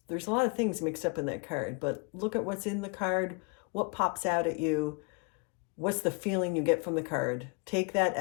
a lot of things mixed up in that card, but look at what's in the card, what pops out at you, what's the feeling you get from the card. Take that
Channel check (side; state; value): right; quieter; 32.4 dB